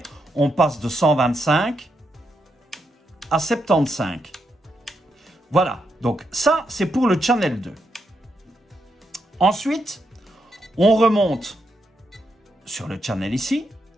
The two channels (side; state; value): both; normal; correlation 0.82